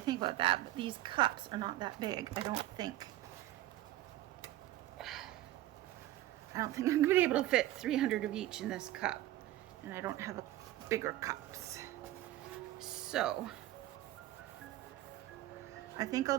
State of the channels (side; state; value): left; quieter; 15.0 dB